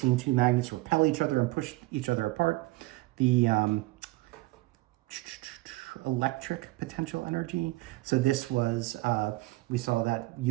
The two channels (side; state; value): left; quieter; 20.6 dB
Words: two magnets repel each other and push each other apart. The electric potential energy. So this was, we saw that